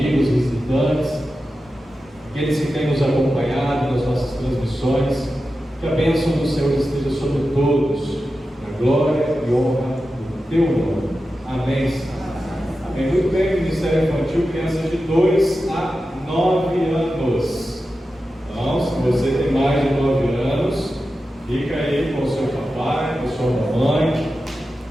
visitantes, aqueles que têm nos acompanhado nas nossas transmissões. Que a bênção do Senhor esteja sobre todos, na glória e honra do teu nome. Amém, Senhor. Amém. Muito bem, Ministério Infantil, crianças de 2 a 9 anos. Então, se você tem mais de 9 anos, fica aí com o seu papai, com a sua mamãe,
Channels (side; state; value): both; normal; correlation 0.92